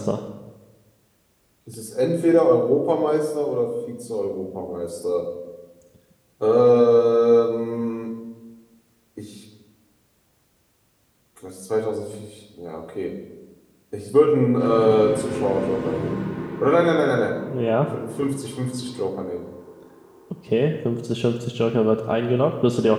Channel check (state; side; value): identical; both; correlation 1.00